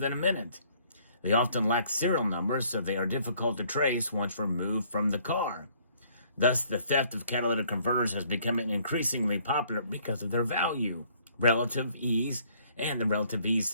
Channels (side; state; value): both; inverted; correlation -0.62